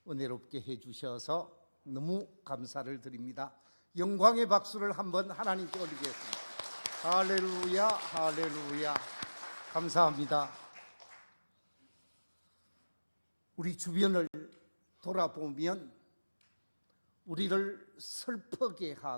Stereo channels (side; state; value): both; inverted; correlation -1.00